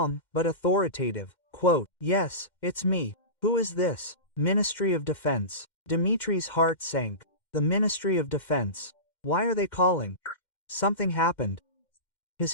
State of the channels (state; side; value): late; right; 2.1 ms